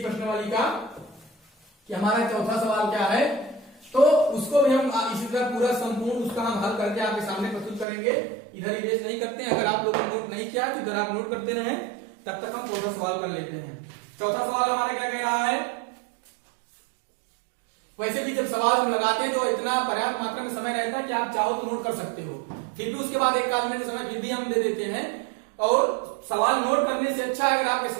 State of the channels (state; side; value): drops out; left; at 7.9 s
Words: का, कि हमारा चौथा सवाल क्या है, तो उसको भी हम इसी तरह पूरा संपूर्ण उसका हम हल करके आपके सामने प्रस्तुत करेंगे। इधर इरेज नहीं करते हैं, अगर आप लोगों ने नोट नहीं किया तो इधर आप नोट करते रहें, तब तक हम चौथा सवाल कर लेते हैं। चौथा सवाल हमारा क्या कह रहा है, वैसे भी जब सवाल हम लगाते हैं तो इतना पर्याप्त मात्रा में समय रहता है कि आप चाहो तो नोट कर सकते हो, फिर भी उसके बाद एक आध मिनट समय फिर भी हम दे देते हैं। और सवाल नोट करने से अच्छा है अगर आपके